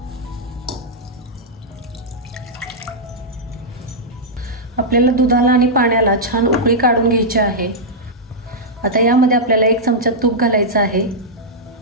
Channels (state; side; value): normal; both; correlation -0.09